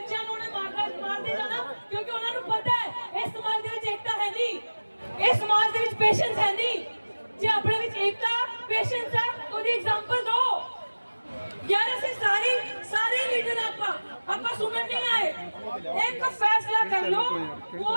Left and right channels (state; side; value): inverted; both; correlation -1.00